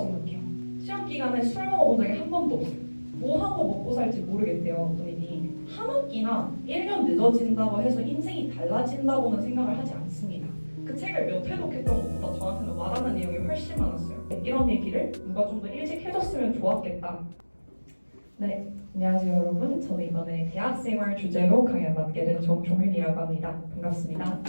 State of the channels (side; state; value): both; inverted; correlation -1.00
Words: 시험 기간에 술 먹어본 적이 한 번도 없어요. 뭐 하고 먹고 살지 모르겠대요, 본인이. 한 학기나 1년 늦어진다고 해서 인생이 달라진다고는 생각을 하지 않습니다. 그 책을 몇 회 독했던 것보다 저한테는 와닿는 내용이 훨씬 많았어요. 이런 얘기를 누가 좀 더 일찍 해줬으면 좋았겠다. 네, 안녕하세요 여러분. 저는 이번에 대학생활 주제로 강연 맡게 된 정종윤이라고 합니다. 반갑습니다.